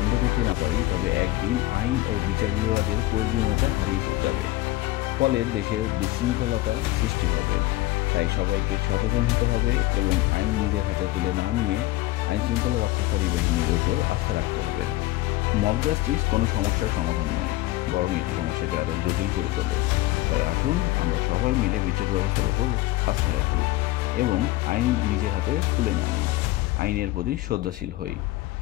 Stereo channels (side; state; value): right; quieter; 17.8 dB